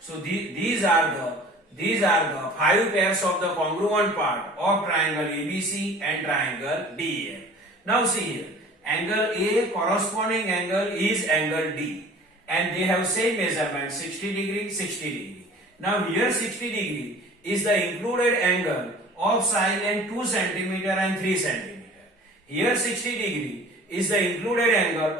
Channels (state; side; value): normal; both; correlation 0.45